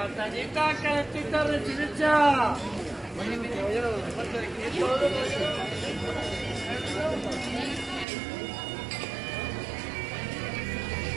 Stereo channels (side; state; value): left; drops out; at 8.1 s